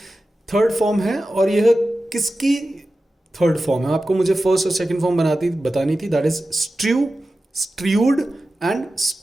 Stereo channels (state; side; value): normal; both; correlation 0.94